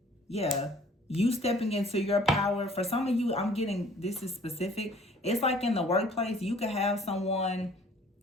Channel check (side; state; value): both; normal; correlation 0.54